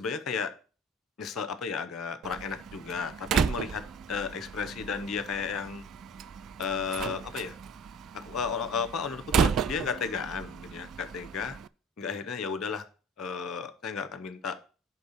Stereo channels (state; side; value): normal; both; correlation 0.43